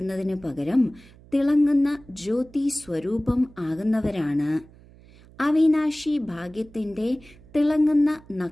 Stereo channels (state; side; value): noise; right; hum, 24 dB below the sound